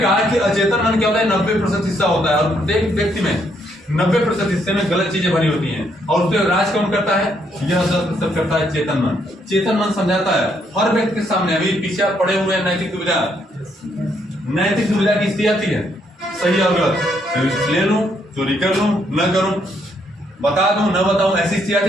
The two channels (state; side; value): normal; both; correlation 0.72